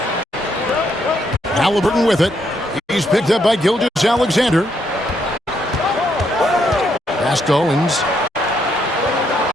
Halliburton with it. He's picked up by Gilgeous-Alexander. Pass to Owens.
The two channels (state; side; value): normal; both; correlation 0.75